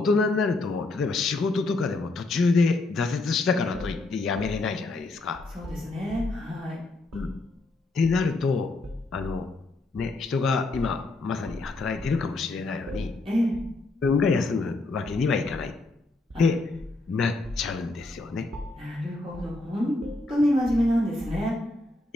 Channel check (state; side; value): quieter; right; 3.0 dB